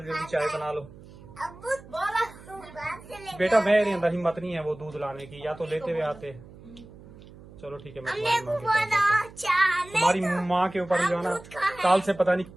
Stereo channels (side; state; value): right; noise; hum, 20 dB below the sound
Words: जल्दी चाय बना लो। अबू बोला तू बाहर से ले बेटा मेरे अंदर हिम्मत नहीं है वो दूध लाने की, या तो लेते हुए आते। चलो ठीक है, मैं हमने तुम्हारी को माँ के पास बोला चाहने तुम्हारी माँ के ऊपर जो है ना, काल से पता नहीं